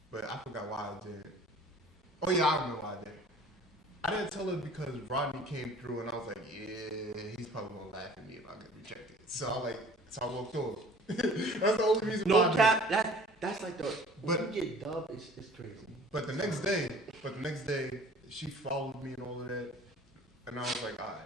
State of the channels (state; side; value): normal; both; correlation 0.48